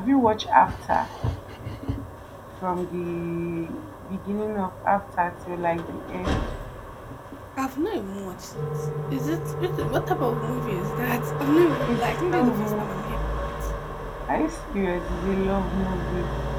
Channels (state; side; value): identical; both; correlation 1.00